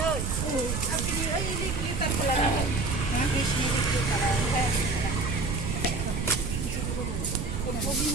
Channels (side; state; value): right; noise; rumble, 2 dB below the sound